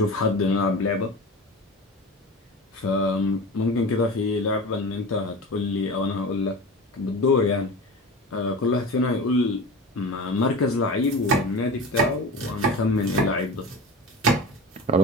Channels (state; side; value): normal; both; correlation 0.31